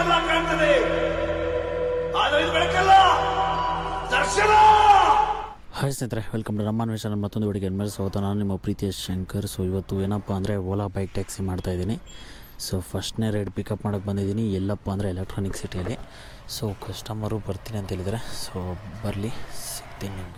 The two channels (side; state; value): both; identical; correlation 1.00